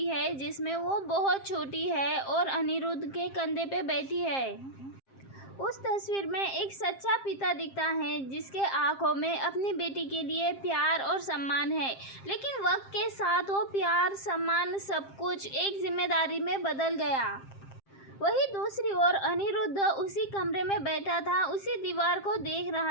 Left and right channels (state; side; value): late; right; 7.5 ms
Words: है जिसमें वो बहुत छोटी है और अनिरुद्ध के कंधे पे बैठी है। उस तस्वीर में एक सच्चा पिता दिखता है जिसके आंखों में अपनी बेटी के लिए प्यार और सम्मान है, लेकिन वक्त के साथ वो प्यार, सम्मान, सब कुछ एक जिम्मेदारी में बदल गया। वही दूसरी ओर अनिरुद्ध उसी कमरे में बैठा था, उसी दीवार को देख